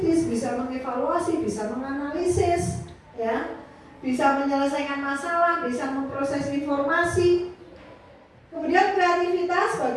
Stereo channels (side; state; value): both; identical; correlation 1.00